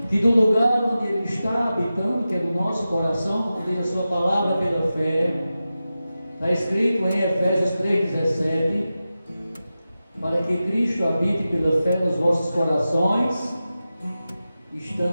que do lugar onde Ele está habitando, que é no nosso coração, como tem a sua palavra pela fé, está escrito em Efésios 3,17, para que Cristo habite pela fé nos vossos corações,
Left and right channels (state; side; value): inverted; both; correlation -0.93